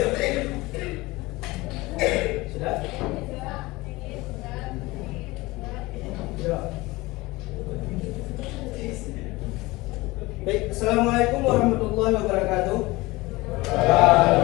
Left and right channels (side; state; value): right; quieter; 21.4 dB